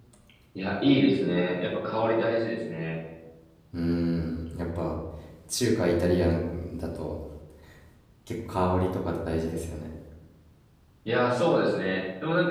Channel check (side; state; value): both; identical; correlation 1.00